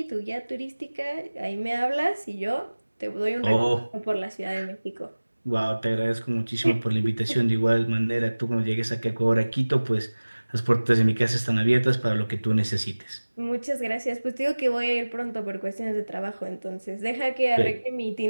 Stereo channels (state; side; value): inverted; both; correlation -1.00